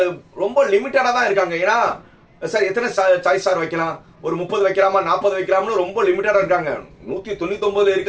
ரொம்ப லிமிட்டடா தான் இருக்காங்க. ஏன்னா சார் எத்தனை சாய்ஸ் சார் வைக்கலாம், ஒரு 30 வைக்கலாமா 40 வைக்கலாம்னு ரொம்ப லிமிட்டடா இருக்காங்க. 199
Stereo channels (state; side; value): identical; both; correlation 1.00